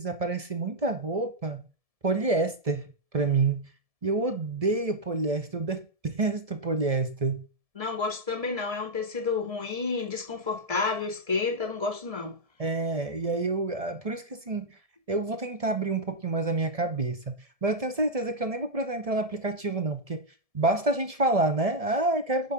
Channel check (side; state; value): left; late; 1.7 ms